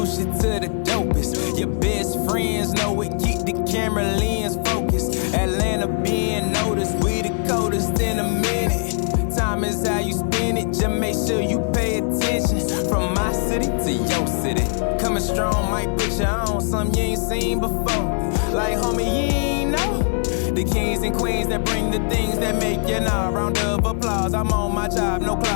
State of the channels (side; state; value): right; silent; 65 dB below the other